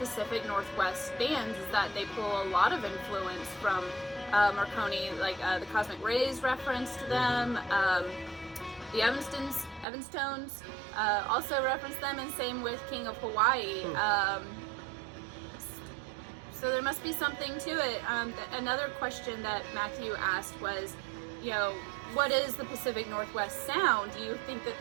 Northwest bands, is that they pull a lot of influence from Morricone, the Cosmic Rays reference to them. The Evanstones also reference them, and same with King of Hawaii. So there must be something to it. Another question that Matthew asked was, what is the Pacific Northwest sound? Do you think that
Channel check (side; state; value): left; drops out; at 9.9 s